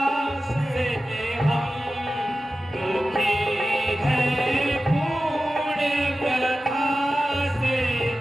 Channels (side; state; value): both; normal; correlation 0.94